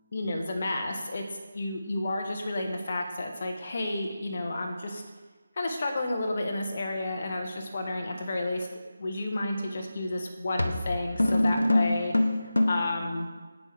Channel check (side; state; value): both; inverted; correlation -0.93